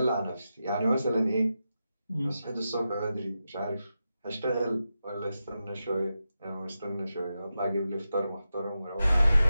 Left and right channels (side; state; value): both; inverted; correlation -0.90